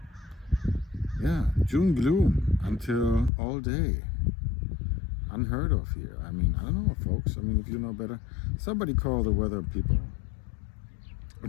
Yeah, June gloom until all day. Unheard of here. I mean, I don't know, folks. I mean, if you know better, somebody call the weather people.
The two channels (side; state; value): right; drops out; at 3.3 s